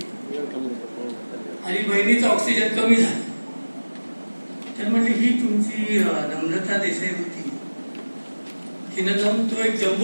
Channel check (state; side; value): inverted; both; correlation -1.00